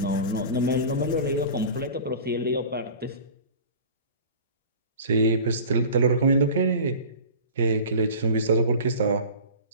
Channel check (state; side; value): inverted; both; correlation -0.38